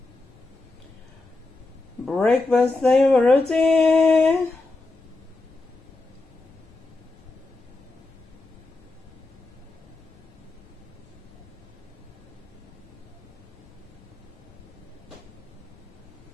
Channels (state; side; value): quieter; right; 3.1 dB